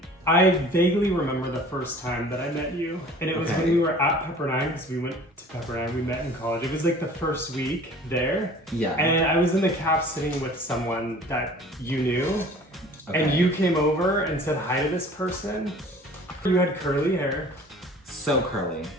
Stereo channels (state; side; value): normal; both; correlation 0.47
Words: I vaguely remember the first time that I met you, and it was when we were at Pepperdine, because we went to Pepperdine, we met in college. It was like the first week there. Yeah. And I was in the caf sitting with someone that you knew, and you came over and said hi to this person. You had curly hair. So curly.